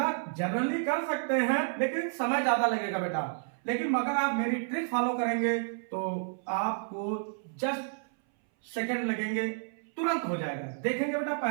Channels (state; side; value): silent; left; 57 dB below the other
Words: जनरली कर सकते हैं, लेकिन समय ज्यादा लगेगा बेटा। लेकिन मगर आप मेरी ट्रिक फॉलो करेंगे तो आपको जस्ट सेकंड लगेंगे, तुरंत हो जाएगा। देखेंगे बेटा,